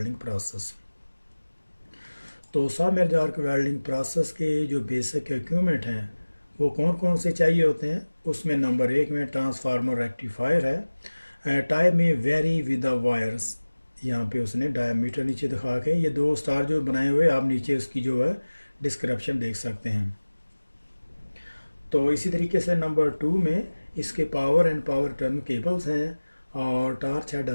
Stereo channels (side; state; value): both; inverted; correlation -1.00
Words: process. तो सबमर्ज आर्क वेल्डिंग प्रोसेस के जो बेसिक इक्विपमेंट हैं वो कौन कौन से चाहिए होते हैं। उसमें नंबर 1 में ट्रांसफार्मर रेक्टिफायर है। टाइप में वेरी विद द वायर्स, यहाँ पे उसने डायमीटर नीचे दिखा के ये दो स्टार जो बनाए हुए आप नीचे उसकी जो है डिस्क्रिप्शन देख सकते हैं। तो इसी तरीके से नंबर 2 में इसके power and power turn cables हैं और टार्च हेड